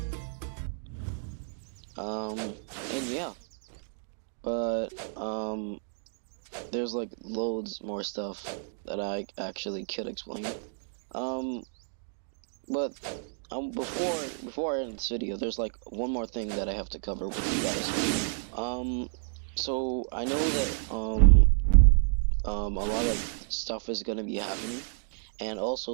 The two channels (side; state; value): left; silent; digital silence